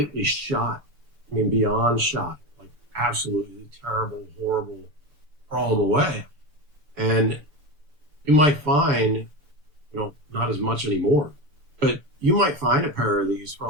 shot. Beyond shot. Like absolutely terrible, horrible, throw them away. And you might find, not as much anymore, but you might find a pair of these for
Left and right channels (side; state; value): left; late; 6.9 ms